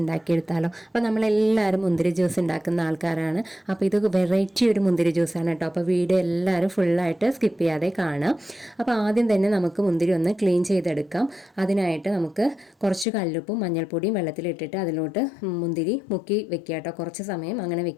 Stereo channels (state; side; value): drops out; right; at 13.1 s